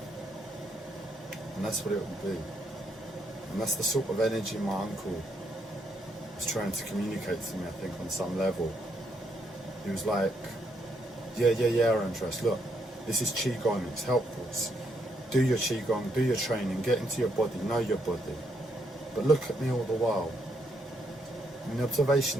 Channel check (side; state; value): both; normal; correlation 0.75